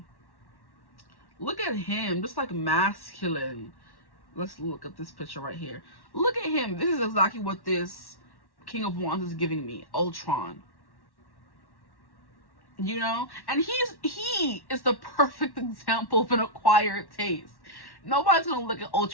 Look at him, just like masculine. Let's look at this picture right here. Look at him. This is exactly what this King of Wands is giving me. Ultron. You know? And he is the perfect example of an acquired taste. Nobody's gonna look at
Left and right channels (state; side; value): late; right; 1.1 ms